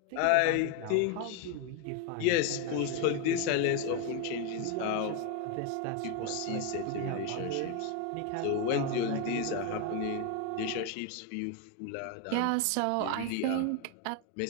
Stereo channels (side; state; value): both; different; correlation 0.02